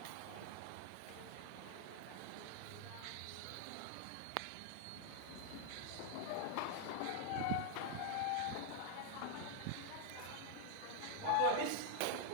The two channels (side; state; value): both; different; correlation 0.00